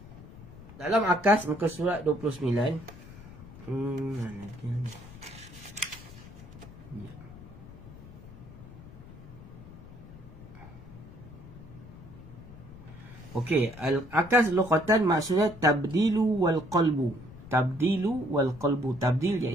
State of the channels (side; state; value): left; noise; rumble, 17 dB below the sound